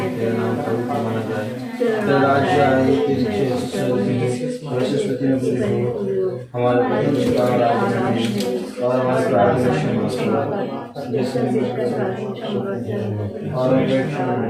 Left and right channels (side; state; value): both; identical; correlation 1.00